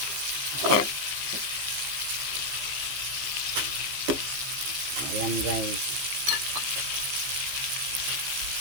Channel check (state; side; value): late; left; 15 ms